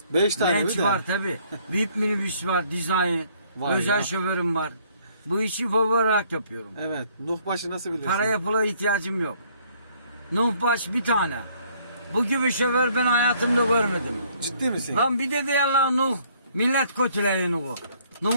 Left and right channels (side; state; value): both; inverted; correlation -0.63